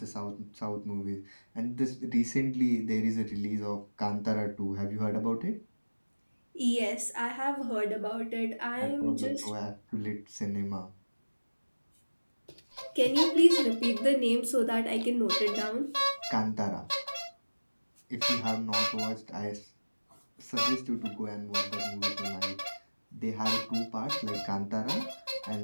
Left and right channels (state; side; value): inverted; both; correlation -1.00